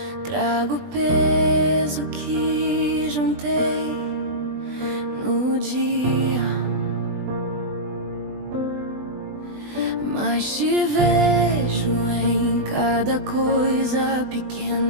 Trago o peso que juntei no dia, mas te vejo em cada coisa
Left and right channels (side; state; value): left; late; 20 ms